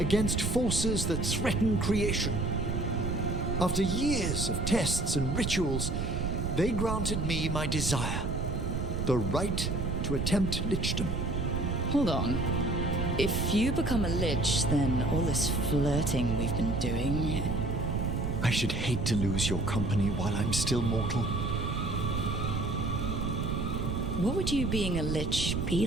forces that threaten creation. After years of tests and rituals, they granted me my desire, the right to attempt lichdom. Hold on. If you become a lich, then all this flirting we've been doing... I should hate to lose your company while I'm still mortal. What would you being a lich be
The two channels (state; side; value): noise; right; rumble, 1 dB below the sound